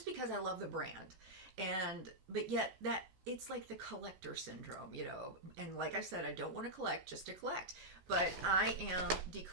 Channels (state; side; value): late; left; 16 ms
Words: love the brand. But yet that it's like the collector syndrome, you know. And like I said, I don't want to collect just to collect, but I am